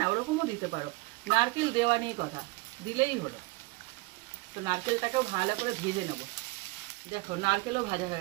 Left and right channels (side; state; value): left; quieter; 23.9 dB